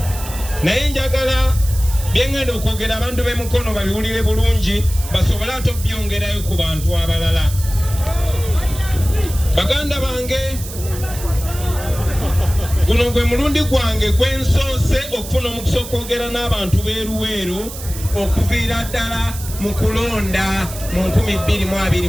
naye njagala byengenda okwogera abantu b'emukono babiwulire bulungi basobole ate obyongerayo ku bantu abalala. Baganda bange, guno gwe mulundi gwange gwensoose okufuna omukisa okwogera n'abantu b'eruweeru okuviira ddala mu kulonda mu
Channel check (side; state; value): right; noise; hiss, 12 dB below the sound